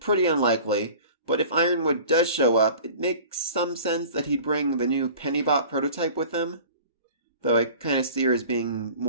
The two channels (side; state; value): both; inverted; correlation -0.43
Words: unlikely. But if Ironwood does show up, it makes some sense that he'd bring the new Pennybot prototype with him. Though I kind of see her as being